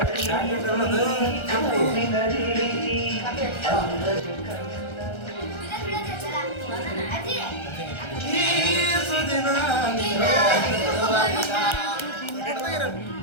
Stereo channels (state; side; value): late; right; 1.3 ms